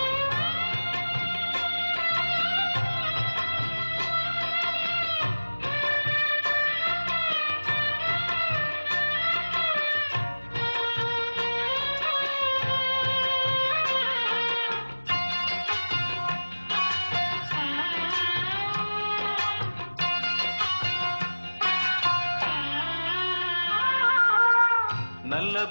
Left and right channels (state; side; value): inverted; both; correlation -1.00